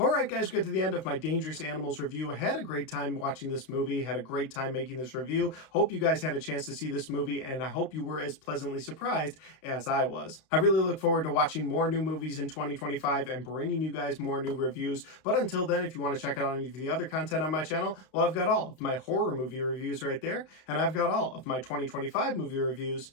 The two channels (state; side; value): late; right; 32 ms